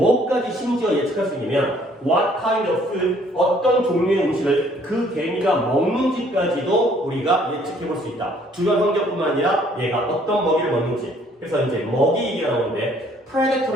심지어 예측할 수 있냐면 what kind of food, 어떤 종류의 음식을 그 개미가 먹는지까지도 우리가 예측해 볼 수 있다. 주변 환경뿐만 아니라 얘가 어떤 먹이를 먹는지. 그래서 이제 먹이 얘기가 나오는데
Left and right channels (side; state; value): both; normal; correlation 0.61